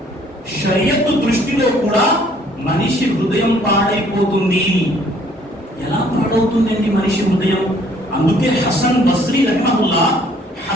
షరియత్ దృష్టిలో కూడా మనిషి హృదయం పాడైపోతుంది. ఎలా పాడవుతుందండి మనిషి హృదయం? అందుకే హసన్ బస్రీ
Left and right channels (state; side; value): normal; both; correlation 0.61